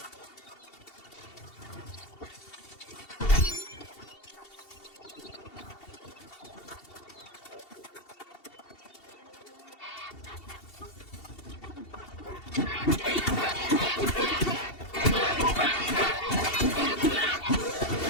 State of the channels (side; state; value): right; late; 2.7 ms